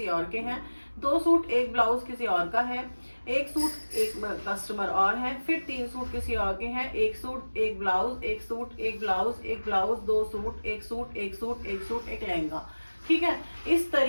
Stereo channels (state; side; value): inverted; both; correlation -1.00